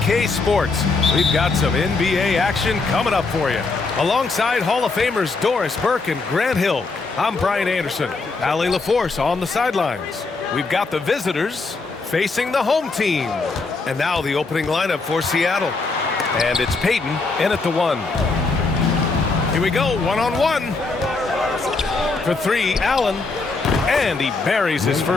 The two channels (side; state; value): right; quieter; 3.9 dB